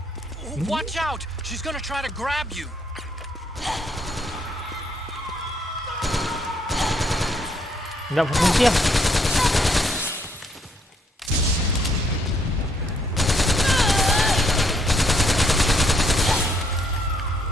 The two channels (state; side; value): normal; both; correlation 0.70